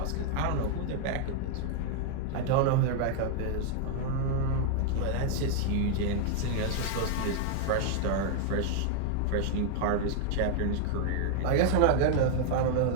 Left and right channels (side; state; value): both; different; correlation 0.00